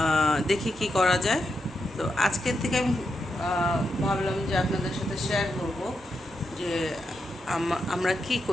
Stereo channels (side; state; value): both; normal; correlation 0.84